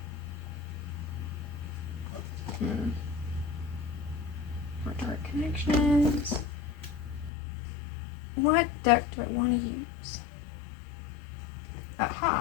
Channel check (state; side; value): drops out; right; at 7.3 s